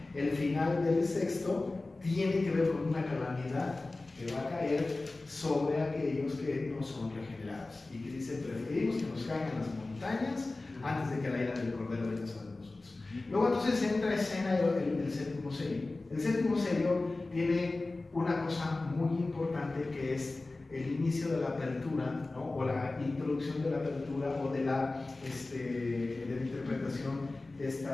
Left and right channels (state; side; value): quieter; right; 3.2 dB